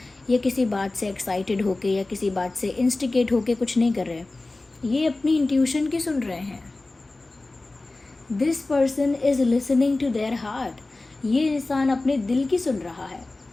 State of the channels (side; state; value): right; quieter; 3.1 dB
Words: या किसी बात से एक्साइटेड होके या किसी बात से इंस्टिगेट होके कुछ नहीं कर रहे हैं। ये अपनी इंट्यूशन की सुन रहे हैं। This person is listening to their heart. ये इंसान अपने दिल की सुन रहा है।